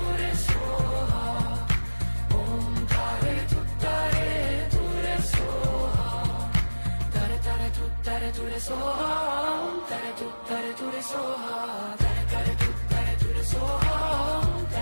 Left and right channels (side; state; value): both; inverted; correlation -1.00